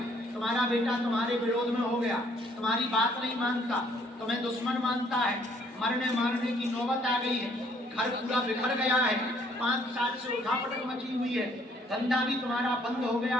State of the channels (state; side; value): normal; both; correlation 0.63